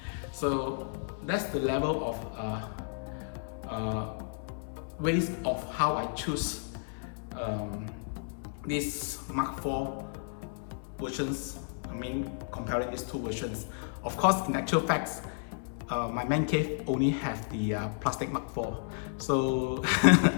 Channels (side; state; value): right; silent; 56 dB below the other